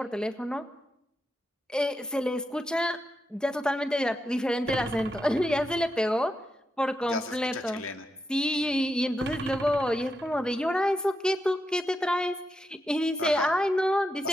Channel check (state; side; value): normal; both; correlation 0.86